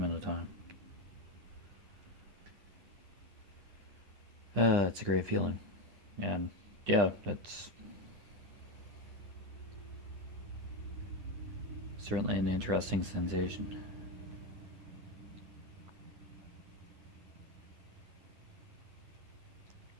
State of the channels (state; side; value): late; left; 10 ms